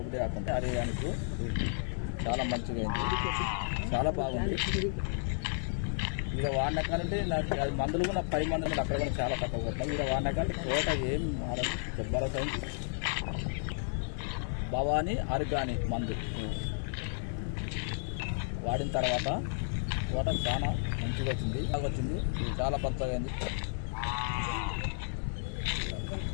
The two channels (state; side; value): silent; right; digital silence